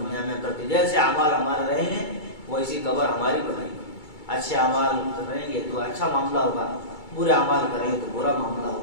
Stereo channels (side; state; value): right; late; 2.3 ms